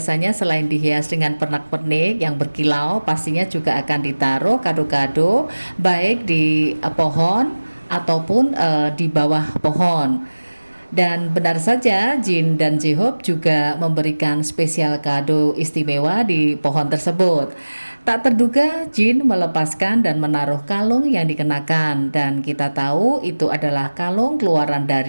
selain dihias dengan pernak-pernik yang berkilau, pastinya juga akan ditaruh kado-kado baik di pohon ataupun di bawah pohon. Dan benar saja Jin dan J-Hope juga memberikan spesial kado istimewa di pohon tersebut. Tak terduga Jin melepaskan dan menaruh kalung yang dikenakan, dan kita tahu itu adalah kalung keluaran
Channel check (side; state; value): both; inverted; correlation -1.00